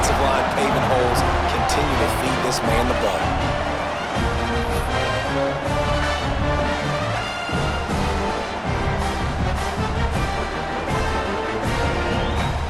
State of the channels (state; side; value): identical; both; correlation 1.00